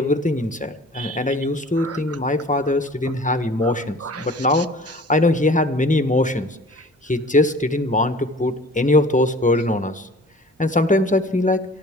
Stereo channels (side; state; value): both; normal; correlation 0.46